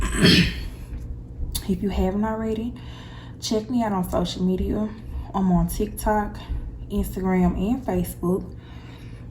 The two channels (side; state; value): both; identical; correlation 1.00